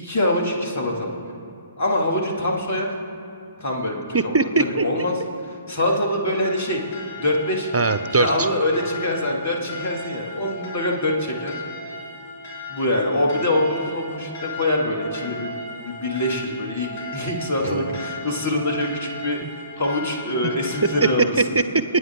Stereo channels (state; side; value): inverted; both; correlation -0.54